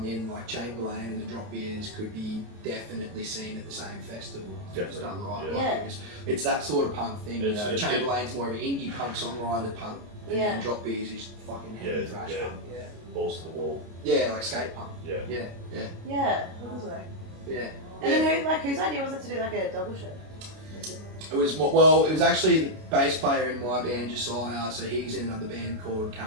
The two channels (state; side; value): late; left; 29 ms